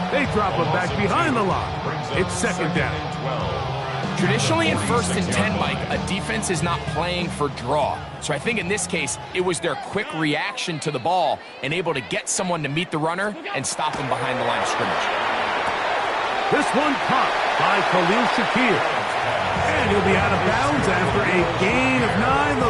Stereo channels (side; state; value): both; identical; correlation 1.00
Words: They drop him back behind the line. It's 2nd down. Traditionally in 1st and 10, Mike, a defense is not playing for draw. So I think in this case, it was their quick reaction to the ball and able to get someone to meet the runner and stop him behind the line of scrimmage. This one caught by Khalil Shakir. And he'll be out of bounds after a gain of 9.